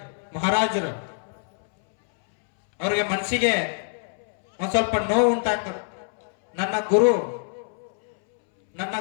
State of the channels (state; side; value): silent; right; 62 dB below the other